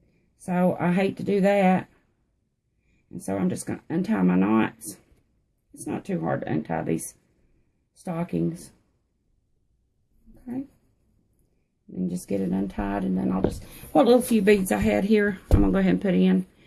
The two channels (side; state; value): both; identical; correlation 1.00